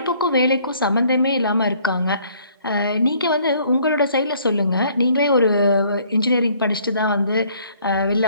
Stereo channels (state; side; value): inverted; both; correlation -0.61